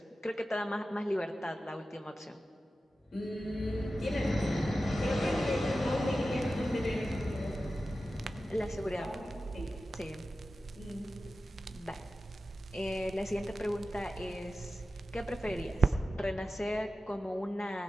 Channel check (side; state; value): both; normal; correlation 0.93